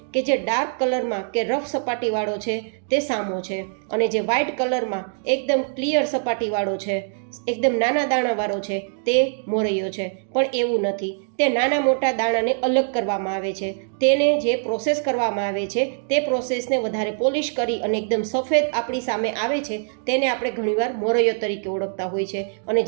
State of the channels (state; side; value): silent; left; digital silence